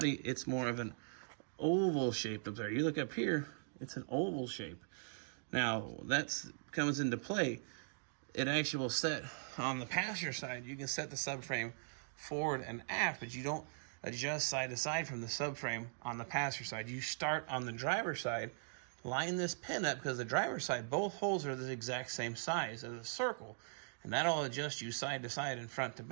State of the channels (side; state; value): left; silent; digital silence